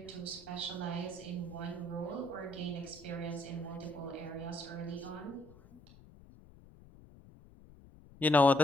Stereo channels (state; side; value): noise; left; rumble, 21 dB below the sound